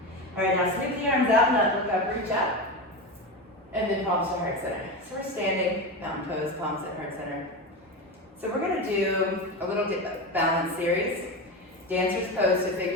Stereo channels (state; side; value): normal; both; correlation 0.21